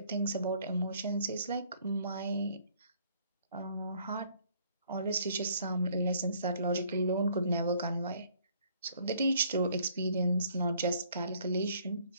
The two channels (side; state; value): both; inverted; correlation -0.62